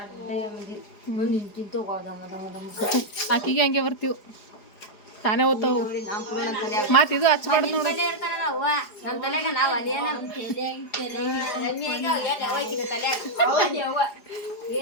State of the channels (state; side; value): late; right; 4.8 ms